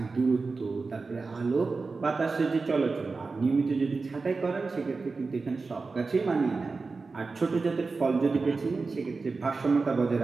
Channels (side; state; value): left; quieter; 4.1 dB